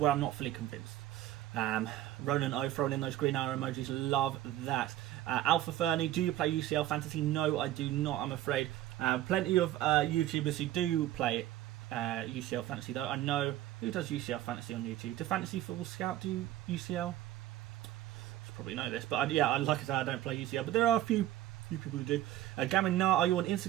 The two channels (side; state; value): left; quieter; 14.0 dB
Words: where I'm not fully convinced. Ronan O throwing in those green arrow emojis. Love that. Alpha Fernie, do you play UCL Fantasy? No, I do not, I'm afraid. Plenty of YouTubers who do play UCL Fantasy though. I know who does UCL Fantasy on YouTube. Do Fantasy Football Scout do UCL? You probably know this, but yeah, like I said, I don't play UCL, but there are a few people who do. Gamin Nar, are you on